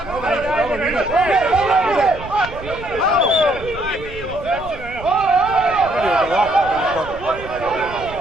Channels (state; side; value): noise; right; rumble, 15 dB below the sound